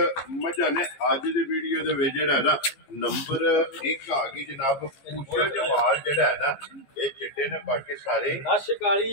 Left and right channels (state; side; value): late; right; 14 ms